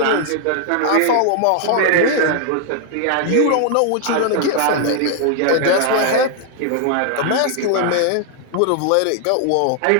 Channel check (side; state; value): both; different; correlation 0.00